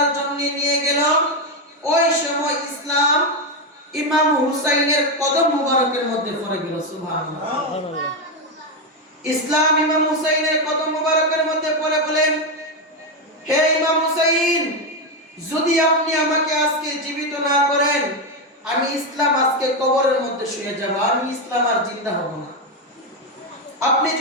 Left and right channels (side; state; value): both; normal; correlation 0.07